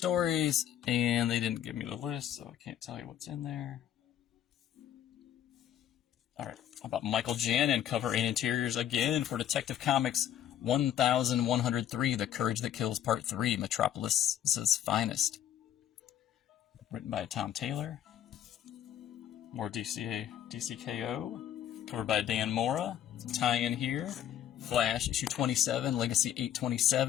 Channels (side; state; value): right; quieter; 10.7 dB